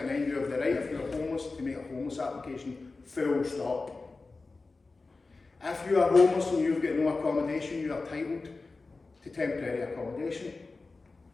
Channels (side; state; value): right; quieter; 3.7 dB